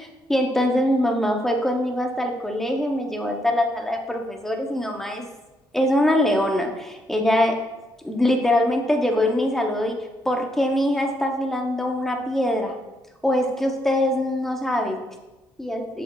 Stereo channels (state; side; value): normal; both; correlation 0.77